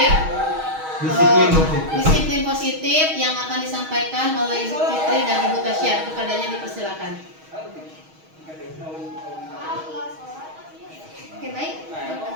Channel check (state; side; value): late; left; 6.3 ms